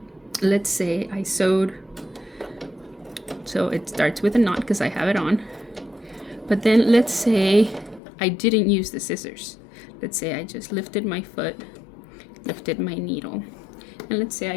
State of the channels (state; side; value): drops out; right; at 8.0 s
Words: let's say I sewed, so it starts with a knot because I have it on. But then let's say I didn't use the scissors. Let's say I just lifted my foot, lifted my needle, and let's say